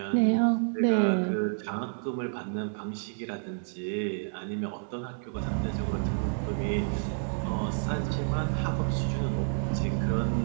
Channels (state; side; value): silent; left; digital silence